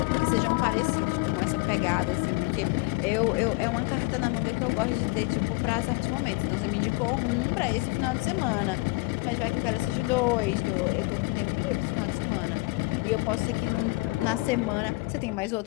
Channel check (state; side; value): quieter; right; 24.8 dB